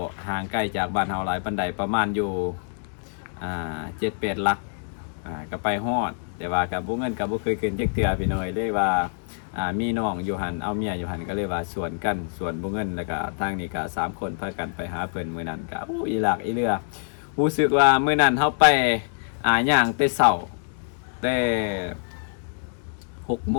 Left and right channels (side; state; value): right; silent; digital silence